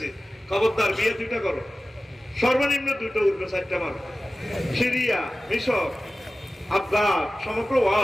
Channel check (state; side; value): normal; both; correlation 0.95